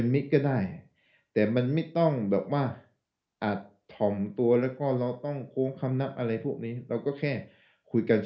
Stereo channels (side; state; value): both; identical; correlation 1.00